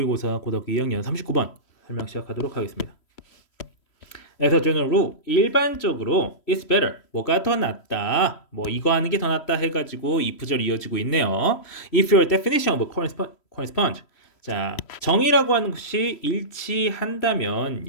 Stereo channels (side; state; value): right; late; 3.1 ms